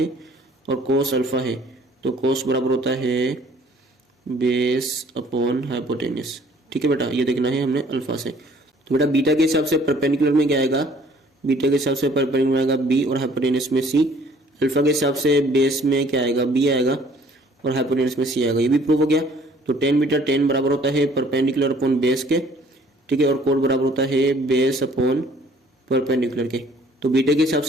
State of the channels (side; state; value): both; normal; correlation 0.57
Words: और कोस अल्फा है तो कोस बराबर होता है बेस अपॉन हाइपोटेन्यूज, ठीक है बेटा, ये देखना है हमने अल्फा से। तो बेटा बीटा के हिसाब से परपेंडिकुलर में क्या आएगा, बीटा के हिसाब से परपेंडिकुलर आएगा बी और हाइपोटेन्यूज में सी। अल्फा के हिसाब से बेस में क्या आएगा, बी आएगा और हाइपोटेन्यूज में सी आएगा, ये भी प्रूव हो गया। तो tan बीटा, tan बराबर होता है परपेंडिकुलर अपॉन बेस के, ठीक है, और कोड बराबर होता है बेस अपॉन परपेंडिकुलर के। तो बीटा के हिसाब